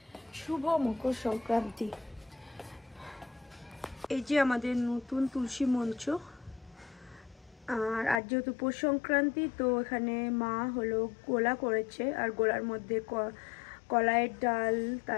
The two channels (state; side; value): drops out; right; at 8.2 s